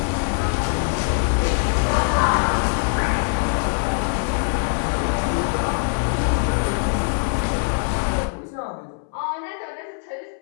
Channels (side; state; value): right; silent; 64 dB below the other